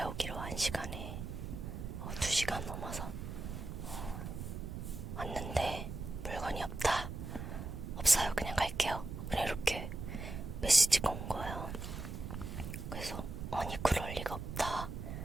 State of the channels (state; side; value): noise; right; rumble, 6 dB below the sound